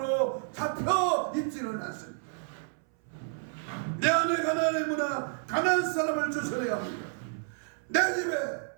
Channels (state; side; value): silent; left; 58 dB below the other